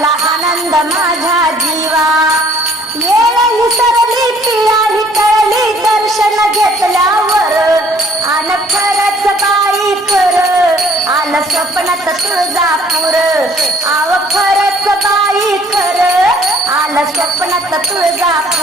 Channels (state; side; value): normal; both; correlation 0.59